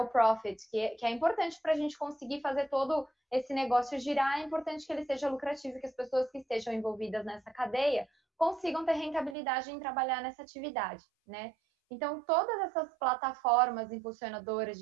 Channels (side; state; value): left; drops out; at 9.3 s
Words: profit, que é importante para a gente conseguir fazer todo esse negócio girar, é importante que ele seja lucrativo, que as pessoas que estejam envolvidas nessa cadeia consigam ter rentabilidade em trabalhar nessa atividade, né? Então, todas essas plataformas impulsionadoras